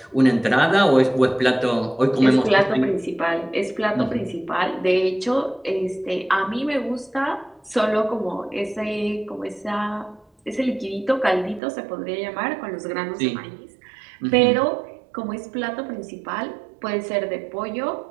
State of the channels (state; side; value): drops out; left; at 11.6 s